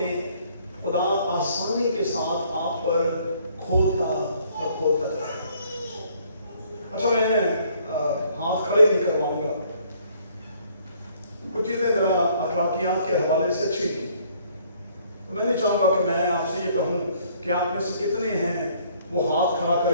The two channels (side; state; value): both; inverted; correlation -0.62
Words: خدا آسانی کے ساتھ آپ پر کھولتا اور کھولتا جاتا ہے۔ اچھا میں ہاتھ کھڑے نہیں کرواؤں گا، کچھ چیزیں ذرا اخلاقیات کے حوالے سے اچھی تھی، تو میں نہیں چاہوں گا کہ میں آپ سے یہ کہوں کہ آپ میں سے کتنے ہیں وہ ہاتھ کھڑا